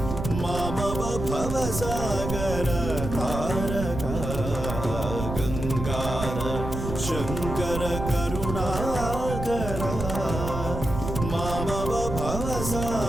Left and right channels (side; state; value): right; noise; rumble, 5 dB below the sound